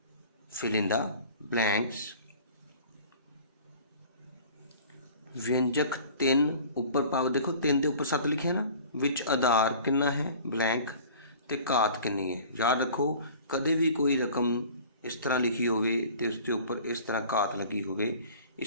फिल इन द ब्लैंक्स। व्यंजक 3 उपर पाव देखो 3 के उपर 7 लिखे है ना, विच आधार कितना है ब्लैंक ते घात कितनी है। याद रखो कदे भी कोई रकम इस तरह लिखी होवे ते उसके उपर इस तरह घात लगी होवे,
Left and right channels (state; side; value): inverted; both; correlation -0.45